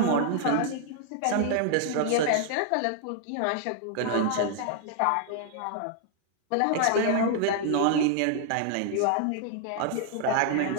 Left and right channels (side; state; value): both; different; correlation 0.00